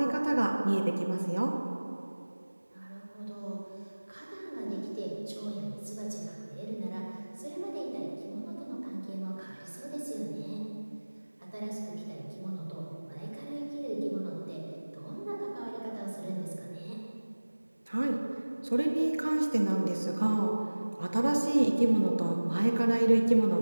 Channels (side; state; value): both; inverted; correlation -1.00